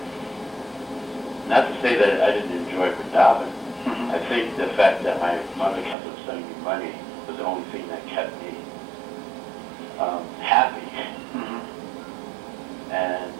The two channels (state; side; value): drops out; left; at 6.0 s